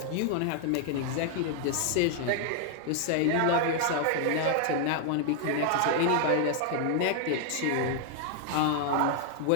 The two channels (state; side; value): different; both; correlation 0.00